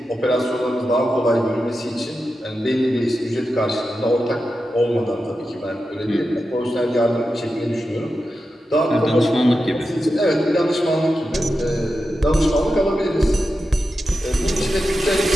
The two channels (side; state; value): both; normal; correlation 0.90